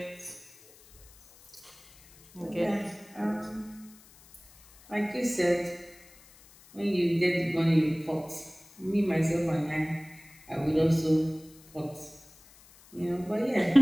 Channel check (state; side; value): noise; left; hiss, 24 dB below the sound